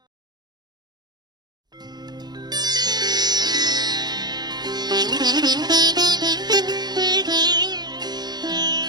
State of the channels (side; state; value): left; late; 0.20 ms